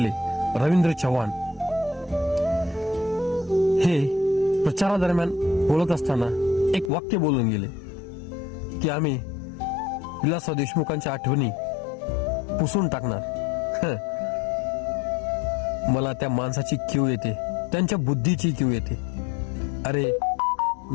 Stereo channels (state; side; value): drops out; right; at 6.9 s